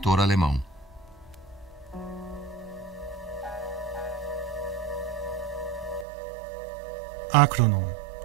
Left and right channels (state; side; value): drops out; left; at 6.1 s